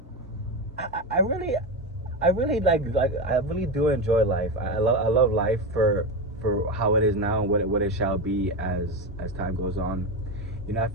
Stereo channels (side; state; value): both; normal; correlation 0.16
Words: I really I really do enjoy life. I love life for how it is now and what it shall be as time goes on. You know, I